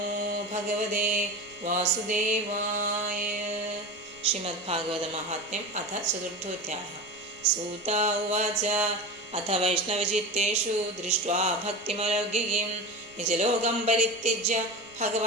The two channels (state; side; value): noise; right; rumble, 28 dB below the sound